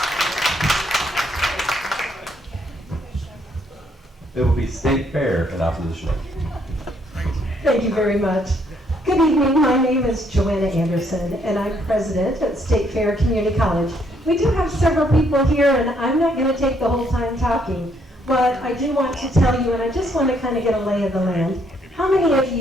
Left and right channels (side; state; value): both; normal; correlation 0.70